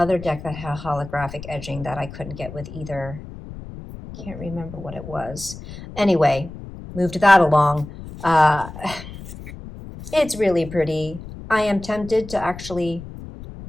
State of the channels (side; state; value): left; noise; rumble, 13 dB below the sound